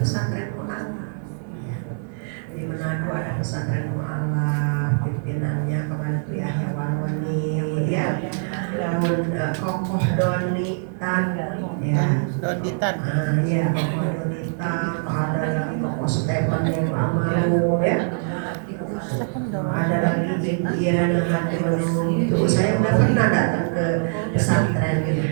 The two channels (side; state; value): left; silent; 63 dB below the other